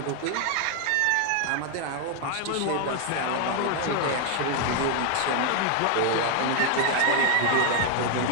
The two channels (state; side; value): different; both; correlation 0.00